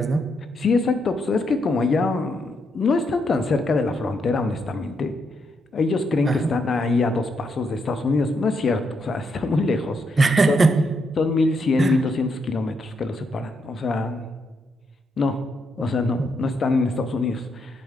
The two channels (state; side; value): normal; both; correlation 0.79